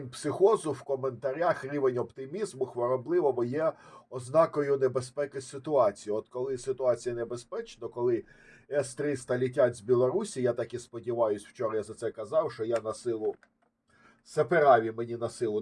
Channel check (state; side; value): identical; both; correlation 1.00